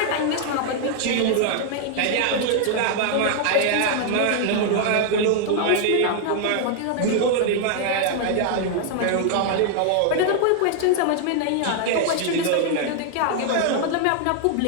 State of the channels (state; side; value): different; both; correlation 0.00